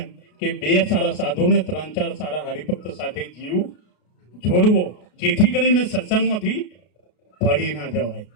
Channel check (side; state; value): right; late; 33 ms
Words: કે 2 સારા સાધુને 3-4 સારા હરિભક્ત સાથે જીવ જોડવો, જેથી કરીને સત્સંગમાંથી પડી ના જવાય.